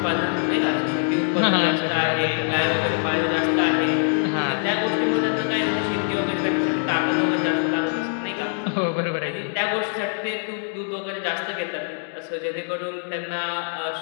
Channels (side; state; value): right; silent; digital silence